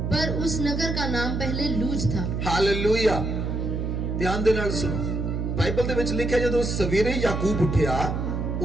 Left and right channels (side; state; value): right; noise; hum, 2 dB below the sound